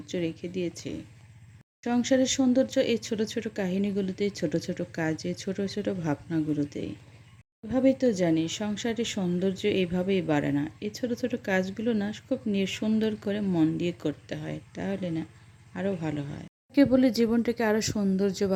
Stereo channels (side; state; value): both; identical; correlation 1.00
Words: রেখে দিয়েছে। সংসারের সৌন্দর্য এই ছোট ছোট কাহিনীগুলোতে, ছোট ছোট কাজে, ছোট ছোট ভাবনাগুলোতেই। এভাবেই তো জানি সংসারের সৌন্দর্য এইভাবেই বাড়ে না। এই ছোট ছোট কাজগুলো না খুব সুন্দর করে মন দিয়ে করতে হয়, তাহলে না আরও ভালো হয়। কে বলে জীবনটাকে আরও সৌন্দর্য